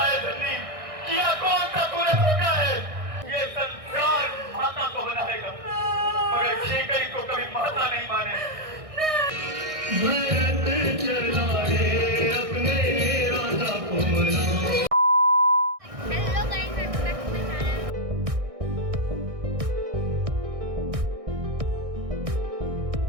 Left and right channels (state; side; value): late; left; 1.6 ms